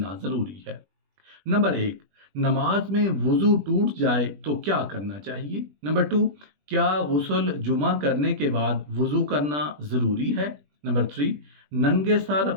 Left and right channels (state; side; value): late; left; 20 ms